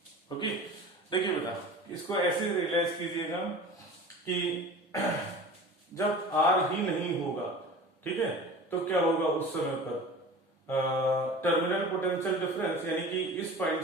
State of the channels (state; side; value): normal; both; correlation 0.38